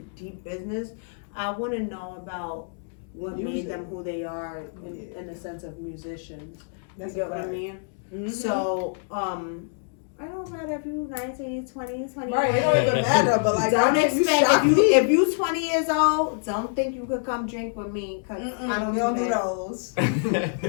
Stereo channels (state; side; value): silent; right; digital silence